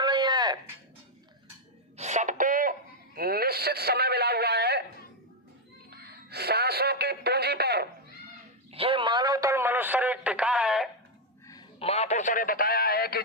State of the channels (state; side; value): normal; both; correlation 0.01